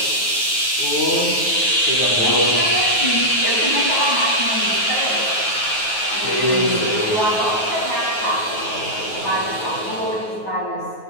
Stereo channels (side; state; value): right; late; 9.3 ms